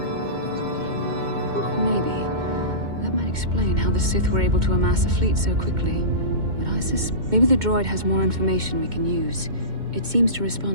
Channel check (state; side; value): late; left; 2.1 ms